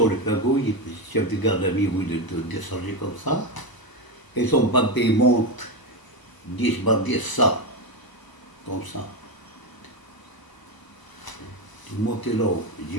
les Pagos? Le chef de gare l'a mis où de descendre comme ça. Et son papier monte 10 par 10, ça, comme ça. Je montais là,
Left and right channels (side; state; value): right; late; 1.0 ms